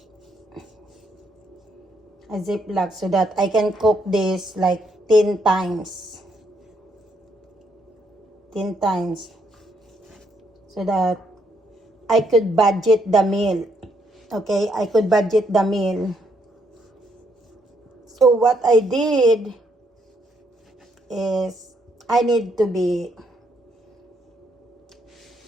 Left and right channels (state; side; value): normal; both; correlation 0.73